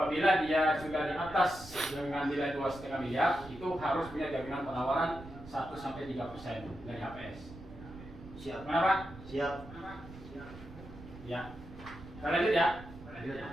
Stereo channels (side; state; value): right; noise; rumble, 16 dB below the sound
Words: dia sudah di atas dengan nilai 2,5 miliar, itu harus punya jaminan penawaran 1-3% dari HPS. Siap. Kenapa? Siap. Ya. Kita lanjut ya.